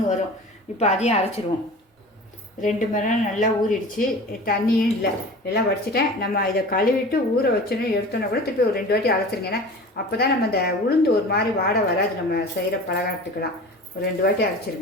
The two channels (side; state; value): both; normal; correlation 0.38